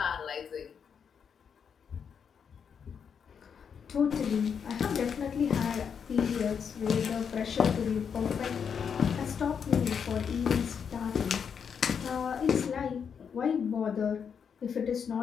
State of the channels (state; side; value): quieter; right; 7.0 dB